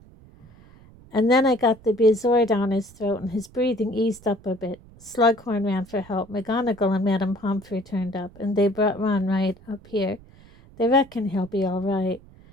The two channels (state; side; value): noise; right; rumble, 24 dB below the sound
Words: "And then I got the bezoar down his throat and his breathing eased up a bit. Slughorn ran for help. McGonagall and Madame Pomfrey turned up, and they brought Ron right up here. They reckon he'll be all right.